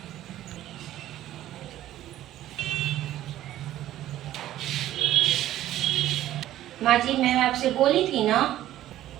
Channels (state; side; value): quieter; left; 13.5 dB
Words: माँ जी मैं आपसे बोली थी ना,